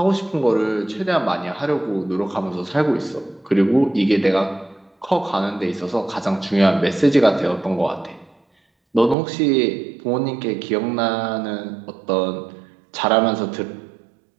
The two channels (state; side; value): drops out; left; at 9.2 s